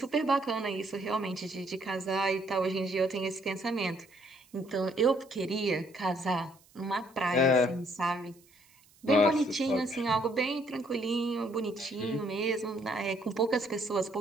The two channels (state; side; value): noise; right; hiss, 29 dB below the sound